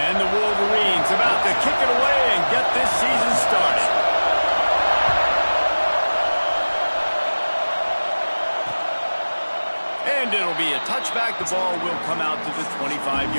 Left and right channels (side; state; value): both; inverted; correlation -1.00